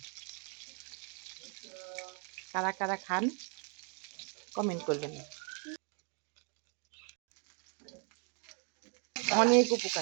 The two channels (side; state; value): left; quieter; 39.1 dB